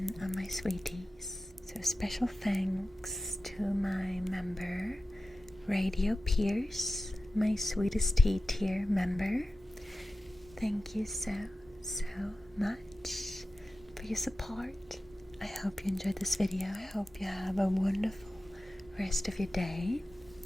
of my sweeties, so So special thanks to my member, Radio Pierce, my sweetest tea tier member. Thank you so much for your support. I hope you enjoyed this video. I hope you have a wonderful rest of your day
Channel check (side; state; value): both; normal; correlation 0.95